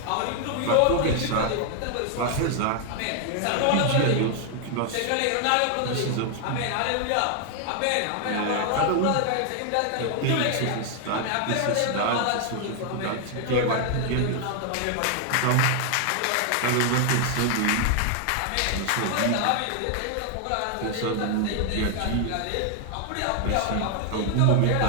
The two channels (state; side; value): different; both; correlation 0.00